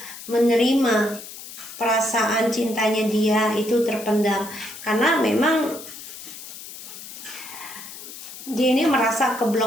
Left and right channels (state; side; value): noise; left; hiss, 13 dB below the sound